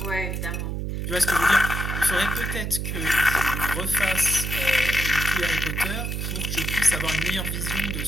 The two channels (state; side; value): noise; right; hum, 3 dB below the sound